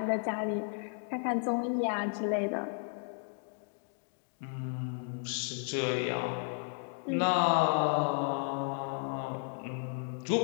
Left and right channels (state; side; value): silent; right; 55 dB below the other